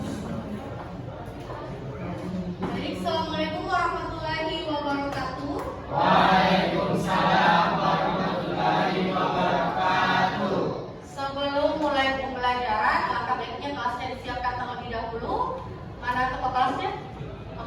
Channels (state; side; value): identical; both; correlation 1.00